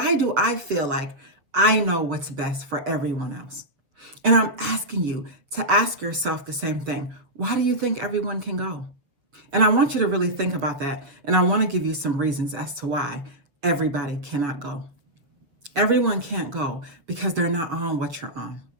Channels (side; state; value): left; late; 7.3 ms